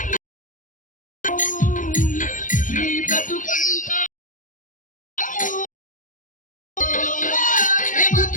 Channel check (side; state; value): right; late; 0.38 ms